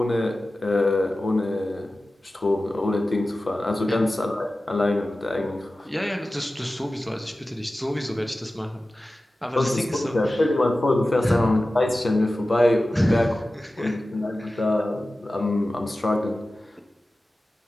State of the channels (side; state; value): both; normal; correlation 0.95